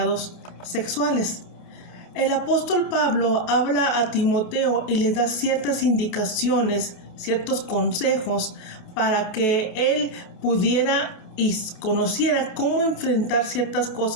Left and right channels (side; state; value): right; late; 28 ms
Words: sexuales. El apóstol Pablo habla a Timoteo y le da ciertas indicaciones, ciertos consejos para que él pudiera y conociera cómo enfrentar ciertas